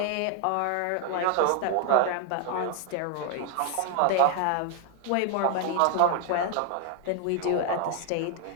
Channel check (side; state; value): both; different; correlation 0.00